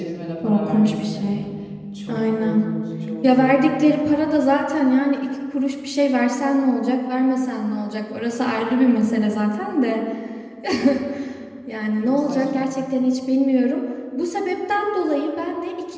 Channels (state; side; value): identical; both; correlation 1.00